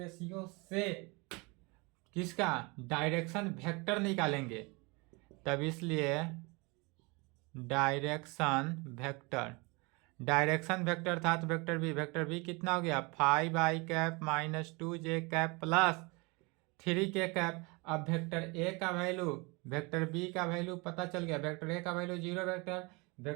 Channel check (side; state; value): left; quieter; 27.6 dB